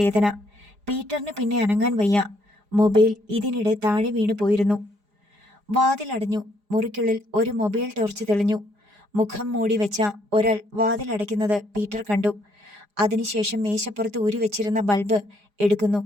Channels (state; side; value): late; left; 4.9 ms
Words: പീറ്ററിന് പിന്നെ അനങ്ങാൻ വയ്യ. മൊബൈൽ ഇതിനിടെ താഴെ വീണു പോയിരുന്നു. വാതിലടഞ്ഞു. മുറിക്കുള്ളിൽ ഒരു മൊബൈൽ ടോർച്ച് തെളിഞ്ഞു. മുഖം മൂടി വെച്ച ഒരാൾ വാതിലടയ്ക്കുന്നത് പീറ്റർ കണ്ടു. അതിനുശേഷം മേശപ്പുറത്ത് ഊരിവെച്ചിരുന്ന ബൾബ് എടുക്കുന്നു.